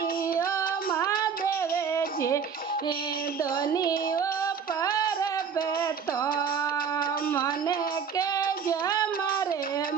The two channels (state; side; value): quieter; left; 6.6 dB